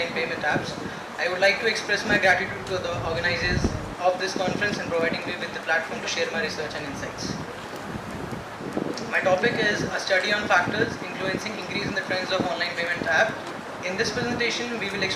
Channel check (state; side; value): identical; both; correlation 1.00